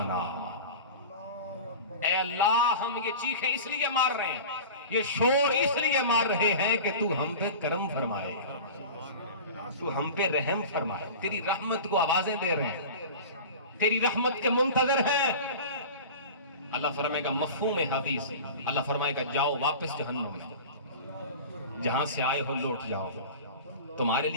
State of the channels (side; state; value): both; inverted; correlation -0.34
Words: اے اللہ ہم یہ چیخیں اس لیے مار رہے ہیں، یہ شور اس لیے مار رہے ہیں کہ تو ہم پہ کرم فرمائے، تو ہم پہ رحم فرمائے، تیری رحمت کو آوازیں دے رہے ہیں، تیری رحمت کے منتظر ہیں۔ اللہ فرمائے گا مفہوم حدیث، اللہ فرمائے گا جاؤ واپس جہنم میں، جہاں سے آئے ہو لوٹ جاؤ، تمہارے